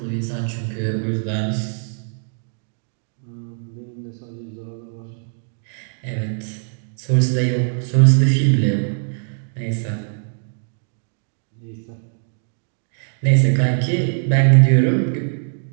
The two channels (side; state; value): left; silent; digital silence